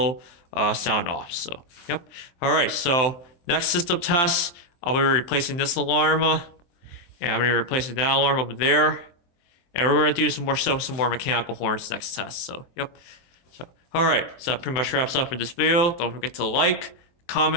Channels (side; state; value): right; late; 23 ms